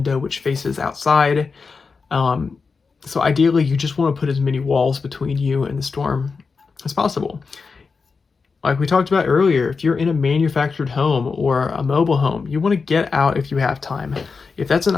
which faces outside. So ideally, you just want to put as many walls between you and the storm as possible. Like we talked about earlier, if you're in a manufactured home or a mobile home, you want to get out if you have time. If that's an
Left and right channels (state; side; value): quieter; right; 4.8 dB